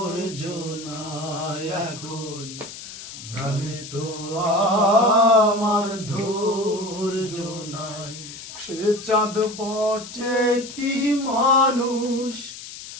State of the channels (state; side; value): noise; left; hiss, 13 dB below the sound